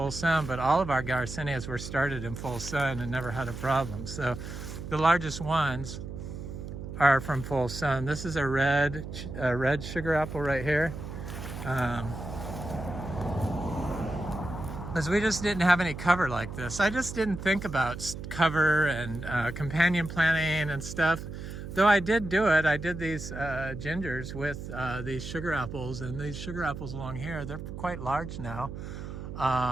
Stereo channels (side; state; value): right; noise; hum, 9 dB below the sound